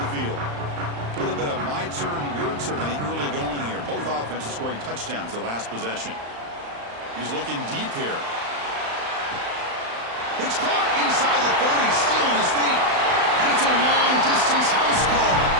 field. A little bit of my turn, your turn in the early going here. Both offenses scoring touchdowns their last possession. He's looking deep here. It's caught inside the 30, still on his feet. And it's a long-distance house call.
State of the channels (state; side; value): late; left; 35 ms